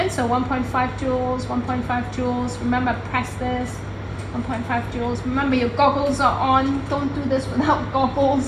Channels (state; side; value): identical; both; correlation 1.00